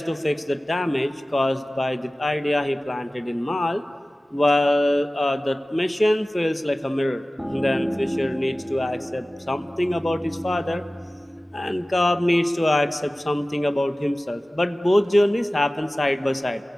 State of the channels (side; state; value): both; normal; correlation 0.97